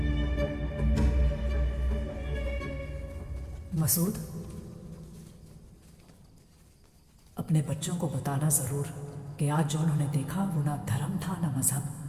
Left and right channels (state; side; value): identical; both; correlation 1.00